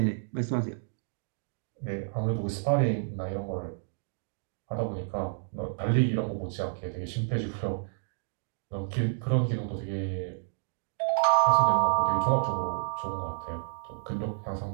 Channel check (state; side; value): silent; left; digital silence